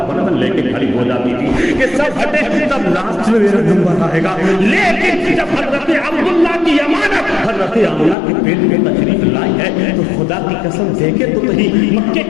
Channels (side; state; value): right; drops out; at 8.2 s